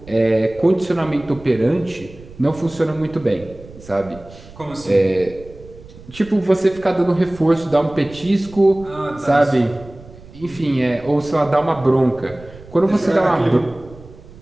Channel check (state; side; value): noise; right; rumble, 20 dB below the sound